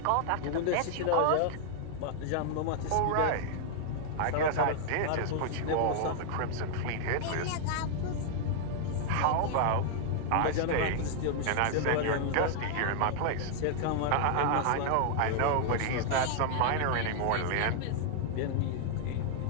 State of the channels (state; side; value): different; both; correlation 0.00